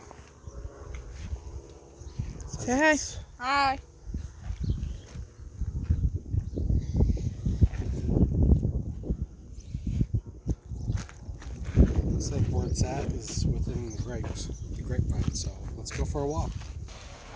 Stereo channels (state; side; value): identical; both; correlation 1.00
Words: Say hi. Hi. Looks like where it's at is within the grapevine. So let's go for a walk.